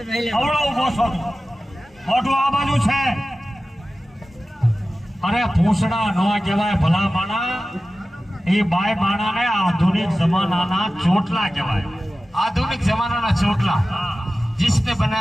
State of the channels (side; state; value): both; normal; correlation 0.95